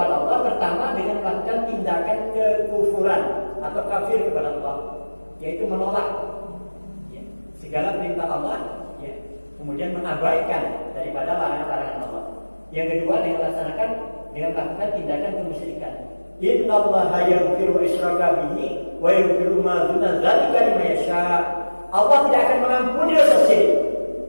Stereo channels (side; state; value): both; inverted; correlation -1.00